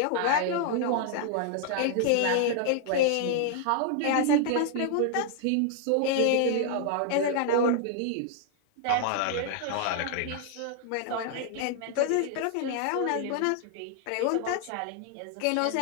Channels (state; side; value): different; both; correlation 0.00